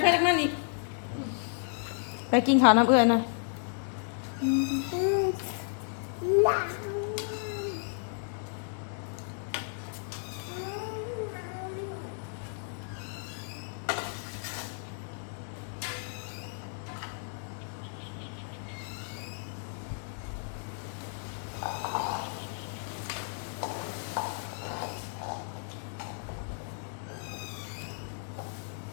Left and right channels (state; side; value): silent; right; digital silence